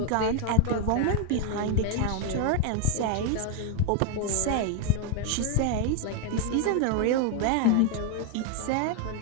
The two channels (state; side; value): different; both; correlation 0.01